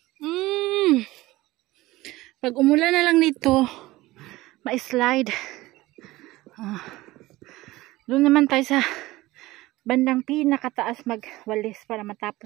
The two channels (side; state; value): left; quieter; 18.6 dB